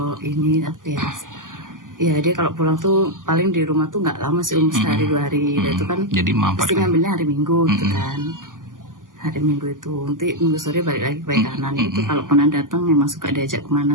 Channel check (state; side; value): late; left; 0.88 ms